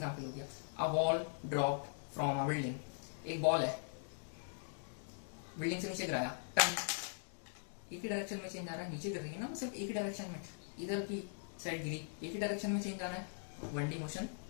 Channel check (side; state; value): right; silent; digital silence